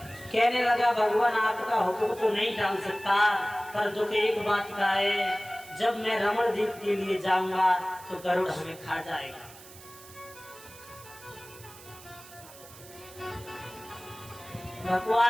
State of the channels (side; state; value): right; noise; hiss, 19 dB below the sound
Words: कहने लगा, भगवान आपका हुक्म तो नहीं टाल सकता, पर दुख एक बात का है, जब मैं रमण द्वीप के लिए जाऊंगा तो गरुड़ हमें खा जाएगा।